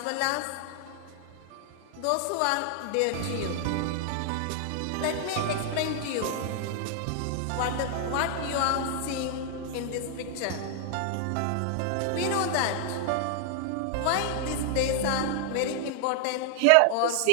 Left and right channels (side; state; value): both; different; correlation 0.00